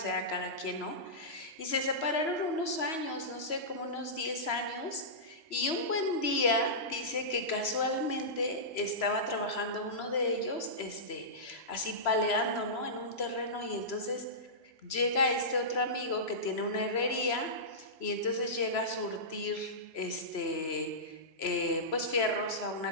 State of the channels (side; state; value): right; late; 3.0 ms